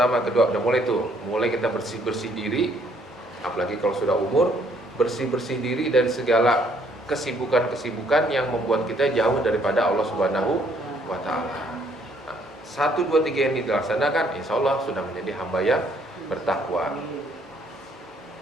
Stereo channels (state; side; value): normal; both; correlation 0.66